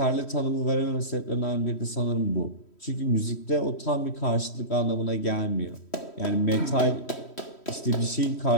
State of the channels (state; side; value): late; right; 3.1 ms